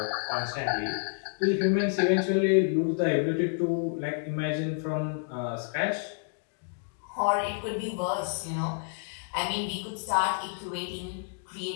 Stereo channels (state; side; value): silent; right; digital silence